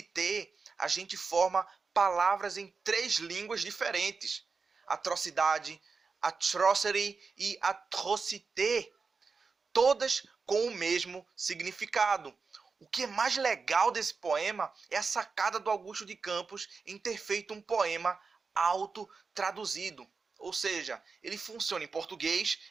a gente forma palavras em 3 línguas diferentes. Atrocidade, atrocity e atrocité, todas com o mesmo significado. O que é mais legal desse poema é a sacada do Augusto de Campos em ter feito um poema autotraduzido. Ou seja, ele funciona em português,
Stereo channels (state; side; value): quieter; left; 4.8 dB